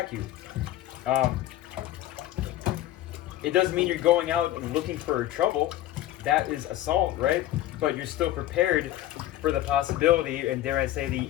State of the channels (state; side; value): quieter; right; 13.9 dB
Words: you. It doesn't mean you're going out and looking for trouble. That is assault, right? But you're still prepared for the possibility, and dare I say